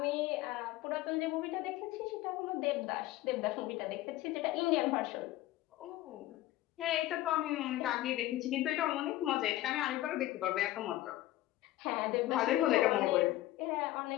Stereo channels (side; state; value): right; quieter; 16.0 dB